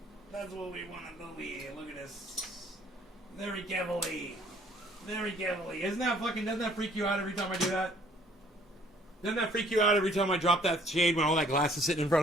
That's what we want to do here. Look at this. Very carefully. Very carefully. Doesn't that freak you out every time I do that? Doesn't that freak you out every time I drop that shade when all that glass is sitting in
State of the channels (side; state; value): both; normal; correlation 0.60